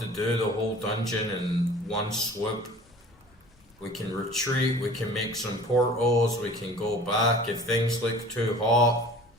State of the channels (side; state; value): both; normal; correlation 0.45